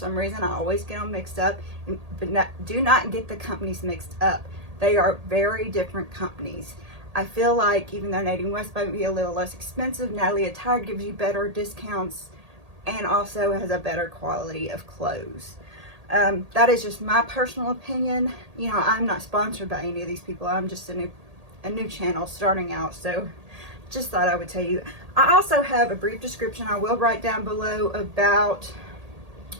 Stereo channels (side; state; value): left; late; 1.8 ms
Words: reason, I always get them mixed up. But do not get the companies mixed up. They are very different companies. I feel like even though Natty West might be a little less expensive, Natalie Attired gives you better discounts and also has a better quality of clothes. That is just my personal opinion. You know, I'm not sponsored by any of these people. I'm just a new channel starting out, so just thought I would tell you. I also have a brief description I will write down below about